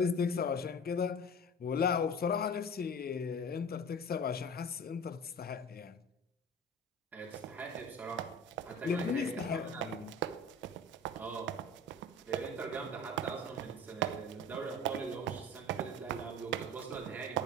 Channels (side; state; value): both; normal; correlation 0.36